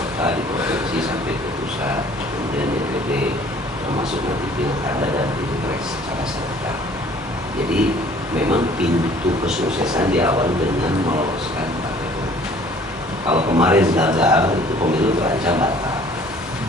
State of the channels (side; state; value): both; normal; correlation 0.54